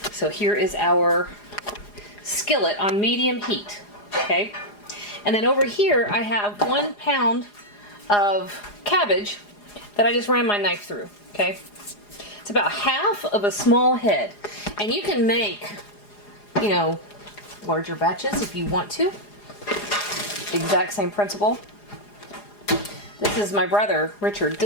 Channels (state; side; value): late; right; 4.9 ms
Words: So here is our skillet on medium heat, okay? And then over here, I have 1 pound of cabbage that I just ran my knife through, okay? It's about half of a small head. And you can make, you know, larger batches if you want to. Exact same principle. This is my brother, Richard.